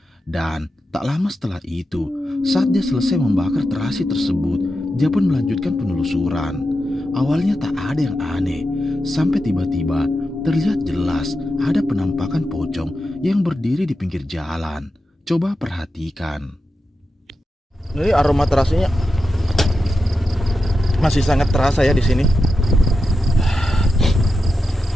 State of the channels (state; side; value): normal; both; correlation 0.89